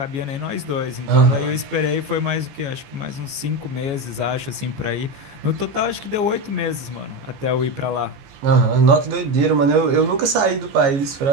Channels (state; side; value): late; left; 15 ms